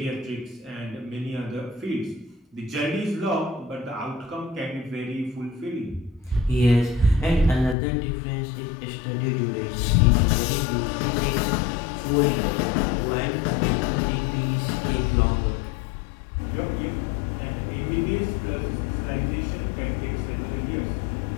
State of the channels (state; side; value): drops out; right; at 7.8 s